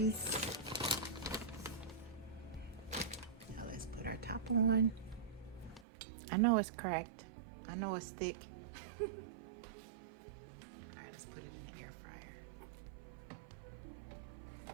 Now let's put our top on. I know it's cracked. I know it's thick. All right, let's put it in the air fryer.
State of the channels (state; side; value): drops out; left; at 5.9 s